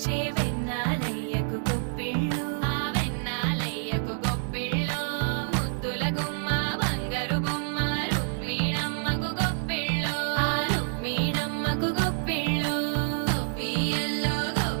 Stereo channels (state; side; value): silent; left; digital silence